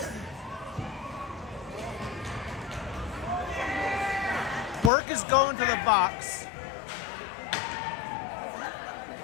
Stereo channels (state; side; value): drops out; right; at 4.9 s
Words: Quirk is going to the box.